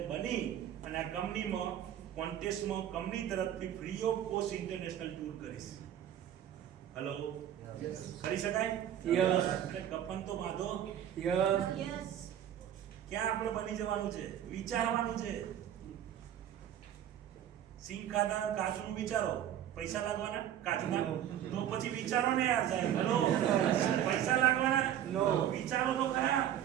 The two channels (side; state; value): left; quieter; 10.7 dB